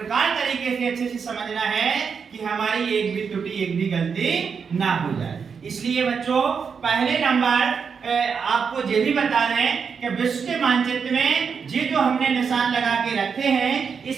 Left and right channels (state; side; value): quieter; left; 6.1 dB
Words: तरीके से अच्छे से समझना है कि हमारी एक भी त्रुटि, एक भी गलती ना हो जाए। इसलिए बच्चों, पहले नंबर आपको ये भी बता दें कि विश्व के मानचित्र में ये जो हमने निशान लगा के रखे हैं,